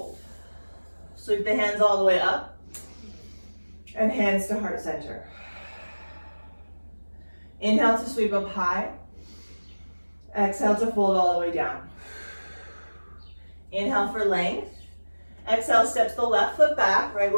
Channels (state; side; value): inverted; both; correlation -1.00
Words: Sweep the hands all the way up, and hands to heart center. Inhale to sweep up high. Exhale to fold all the way down. Inhale for length. Exhale, steps the left foot back, right